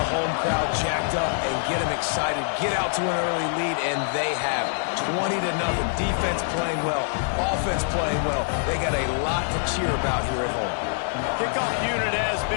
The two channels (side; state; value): right; silent; digital silence